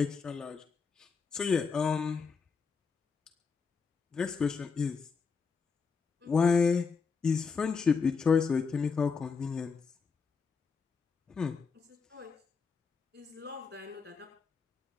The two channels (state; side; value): quieter; right; 5.3 dB